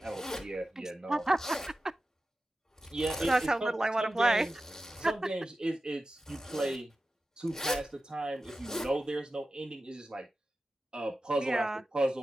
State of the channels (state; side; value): normal; both; correlation 0.93